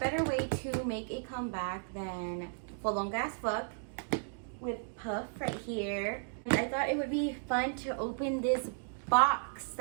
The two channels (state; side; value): silent; left; digital silence